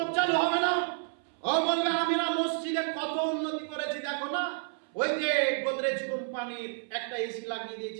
চালু হবে না। ও বলবে আমরা মসজিদে কত উন্নতি করেছি, দেখো না, ওই যে গোদরেজ কোম্পানির একটা এসি লাগিয়ে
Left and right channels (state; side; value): silent; left; 58 dB below the other